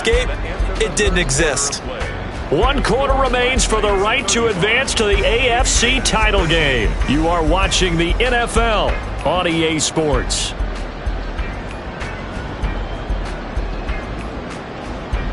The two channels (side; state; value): both; identical; correlation 1.00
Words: It didn't exist. 1 quarter remains for the right to advance to the AFC title game. You are watching the NFL on EA Sports.